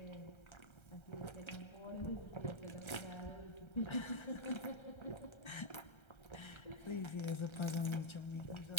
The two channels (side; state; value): right; late; 1.3 ms